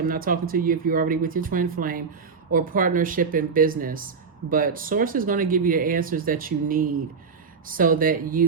not talking to you if you're already with your twin flame, or partnership in business. But Source is going to give you the answers that you need so that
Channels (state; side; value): quieter; left; 5.4 dB